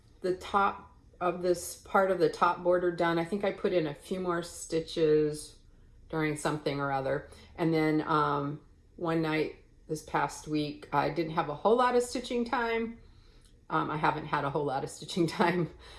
the top of this part of the top border done. I think I put in a few more stitches during something or other. And then one night this past week, I didn't have a whole lot of stitching time. I haven't had a whole lot of stitching time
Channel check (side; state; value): both; identical; correlation 1.00